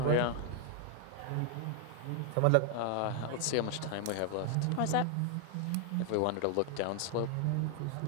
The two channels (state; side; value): different; both; correlation 0.00